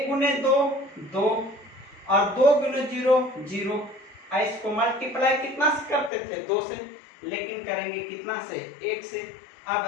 गुने 2 2 और 2 गुने 0 0। इसको मल्टीप्लाई कितना से करते थे 2 से, लेकिन करेंगे कितना से 1 से। आप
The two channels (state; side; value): drops out; right; at 6.1 s